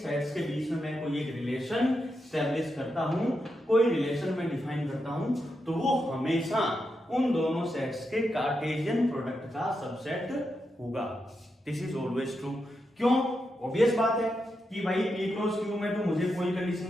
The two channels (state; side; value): normal; both; correlation 0.85